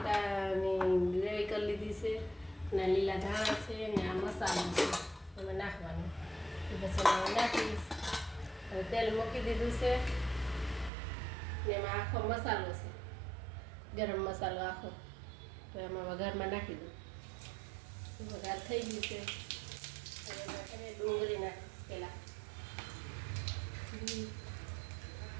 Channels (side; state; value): left; drops out; at 10.9 s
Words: ગ્રેવી કરી લીધી છે અને લીલા ધાણા છે ને આ મસાલો છે એમાં નાખવાનું. પછી નાખીશ. હવે તેલ મૂકી દીધું છે ને એમાં આખો મસાલો છે, ગરમ મસાલો આખો, તો એમાં વઘારમાં નાખી દઉં. વઘાર થઈ ગયું છે. હવે ડુંગળી નાખીશ પહેલાં.